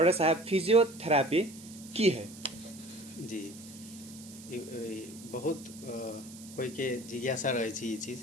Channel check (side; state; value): right; noise; hiss, 17 dB below the sound